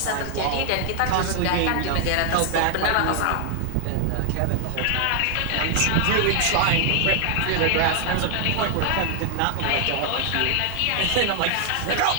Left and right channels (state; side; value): different; both; correlation 0.00